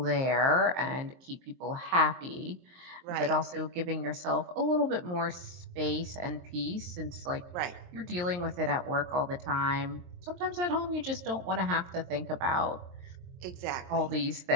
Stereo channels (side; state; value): left; late; 23 ms